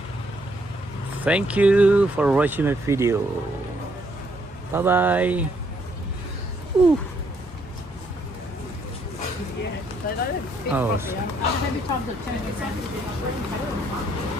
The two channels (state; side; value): normal; both; correlation 0.70